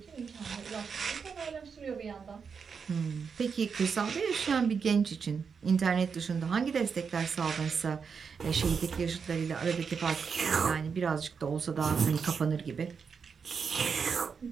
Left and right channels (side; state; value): left; quieter; 6.0 dB